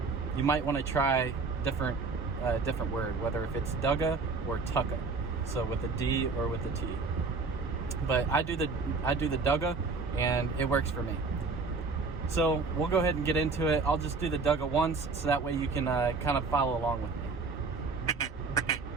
you might want to try different word, whether if it's dugga or tucka, so with a D or with a T. But I do the dugga, and it works for me. So we'll go ahead and get into it. I'll just do the dugga once, so that way you can kind of follow along with me.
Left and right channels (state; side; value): quieter; left; 4.2 dB